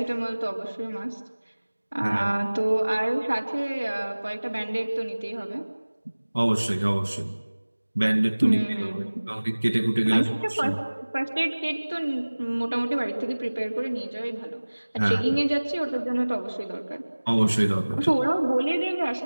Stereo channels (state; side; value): inverted; both; correlation -1.00